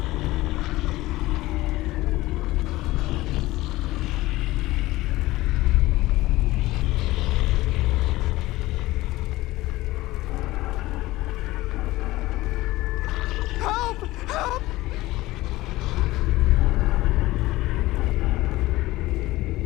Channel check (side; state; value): right; quieter; 18.2 dB